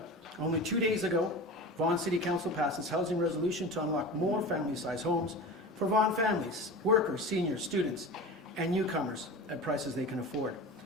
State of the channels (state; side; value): normal; both; correlation 0.32